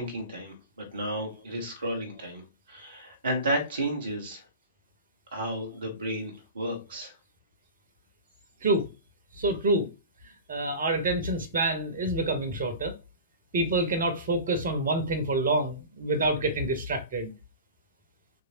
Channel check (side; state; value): both; inverted; correlation -0.34